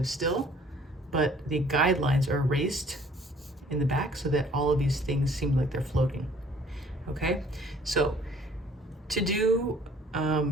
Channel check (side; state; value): both; normal; correlation 0.56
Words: still, but the guidelines are erased in the back so that all of these things seem like they're floating, okay? So to do